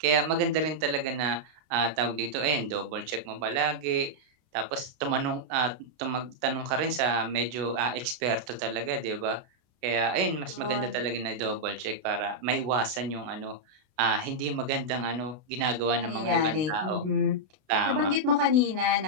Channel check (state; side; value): late; left; 32 ms